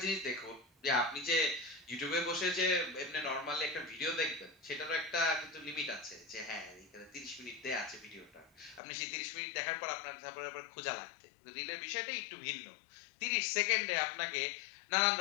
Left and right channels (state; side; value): drops out; right; at 8.8 s